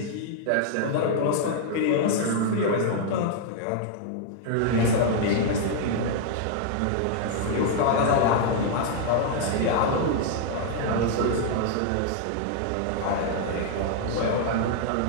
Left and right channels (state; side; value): different; both; correlation 0.00